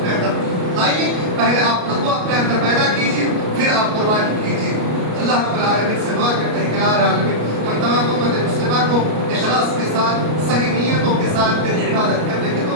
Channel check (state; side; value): late; left; 33 ms